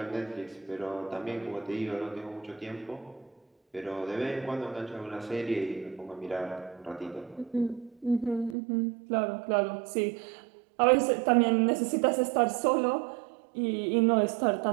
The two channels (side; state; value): left; drops out; at 8.6 s